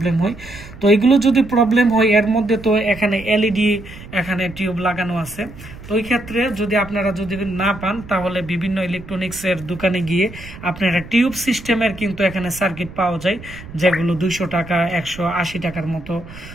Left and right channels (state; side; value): noise; right; rumble, 16 dB below the sound